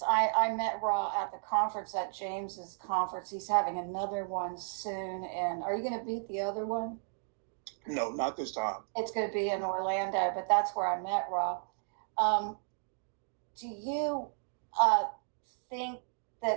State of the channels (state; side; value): silent; left; digital silence